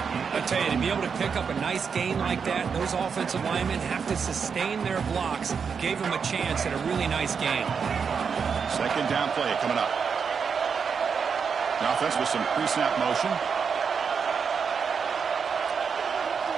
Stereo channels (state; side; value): quieter; left; 6.2 dB